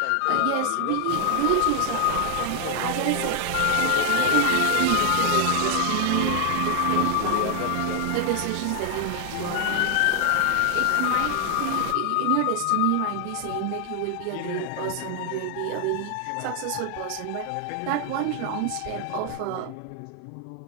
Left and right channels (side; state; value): both; different; correlation 0.00